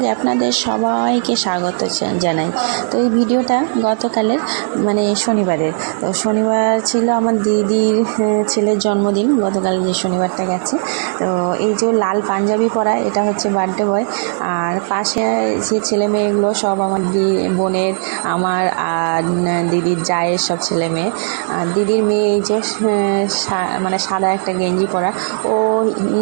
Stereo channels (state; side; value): silent; left; digital silence